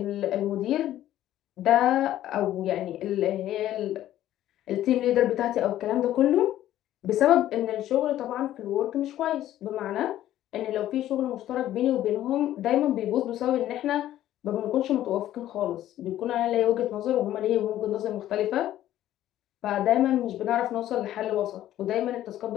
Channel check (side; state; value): right; quieter; 12.9 dB